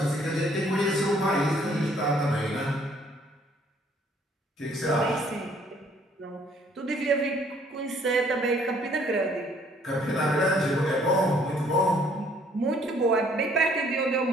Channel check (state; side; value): normal; both; correlation 0.62